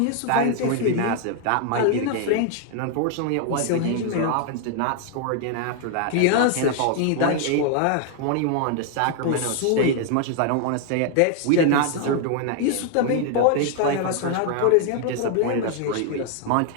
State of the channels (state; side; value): different; both; correlation 0.00